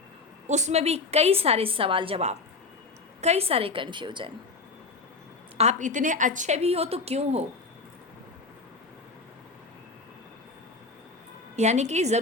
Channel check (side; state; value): right; quieter; 3.9 dB